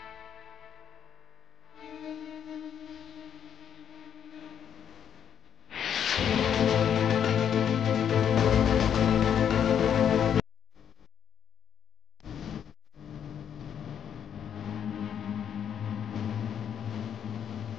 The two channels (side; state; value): right; quieter; 8.7 dB